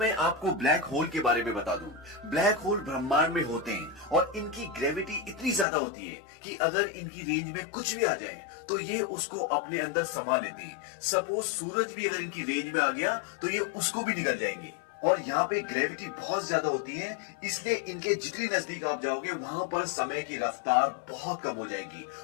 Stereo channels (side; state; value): right; drops out; at 5.7 s